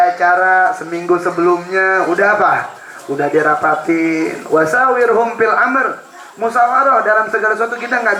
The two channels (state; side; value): identical; both; correlation 1.00